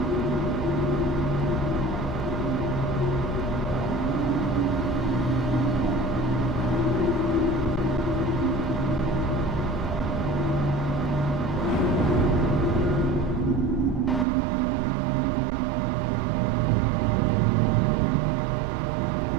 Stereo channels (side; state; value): left; drops out; at 14.2 s